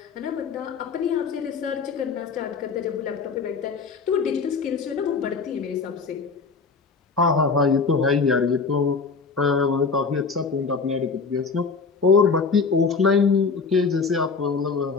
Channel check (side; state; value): right; quieter; 4.9 dB